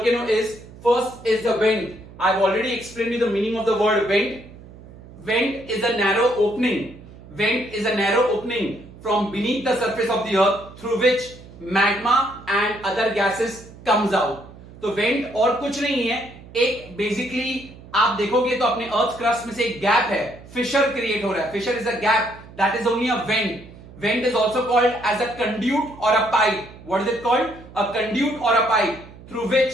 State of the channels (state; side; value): noise; right; hum, 19 dB below the sound